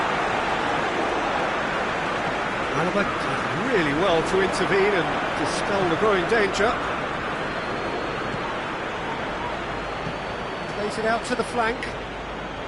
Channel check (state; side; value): identical; both; correlation 1.00